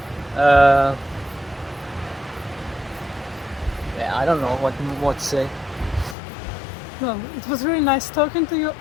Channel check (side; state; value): right; drops out; at 6.2 s